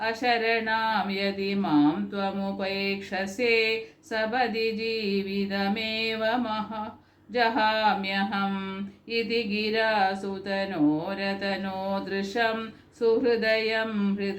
अशरणां यदि मां त्वमुपेक्षसे सपदि जीवितमेव जहाम्यहम् इति गिरासुतनोरतनोदृशं सुहृदयं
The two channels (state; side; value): identical; both; correlation 1.00